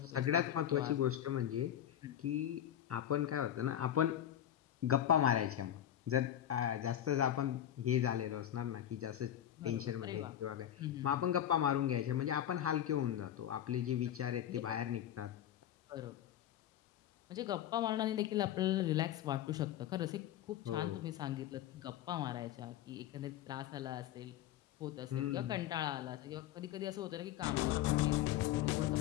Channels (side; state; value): right; quieter; 11.3 dB